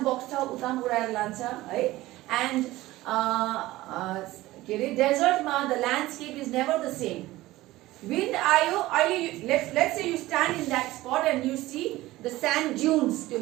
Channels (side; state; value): left; quieter; 17.5 dB